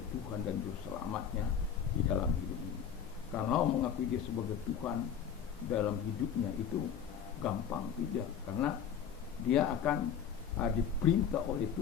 Tuhan dan Juru Selamatnya di dalam hidup ini. Kalau mengakui Dia sebagai Tuhan dalam hidupnya itu gampang, tidak, karena dia akan diperintah oleh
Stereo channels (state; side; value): quieter; right; 8.0 dB